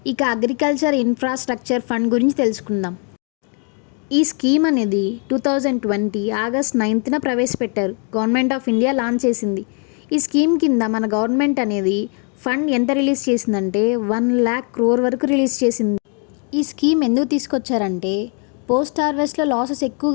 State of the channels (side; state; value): right; quieter; 39.4 dB